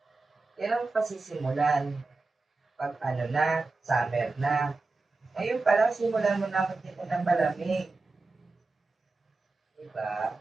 Kailan mo pa sisimulan? 'Pag ano na, summer na. Ngayon pa lang simulan mo na magtinda ng palamig. Diba?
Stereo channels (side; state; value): left; quieter; 3.6 dB